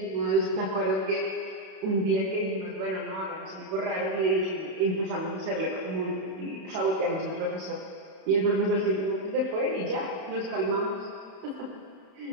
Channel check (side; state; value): left; late; 31 ms